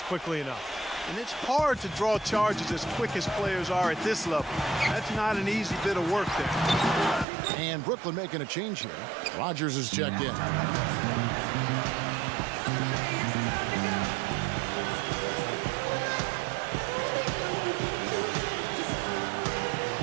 quickly enough. And it's hard to draw charges as quick as players are at this level. That's not an easy bit of work there. And Brooklyn making a change here. Rogers is checked in.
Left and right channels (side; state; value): left; drops out; at 7.2 s